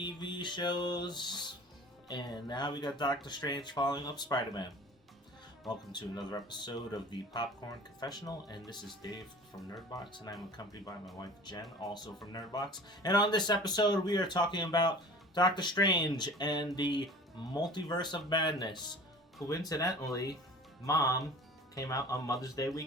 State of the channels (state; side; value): normal; both; correlation 0.43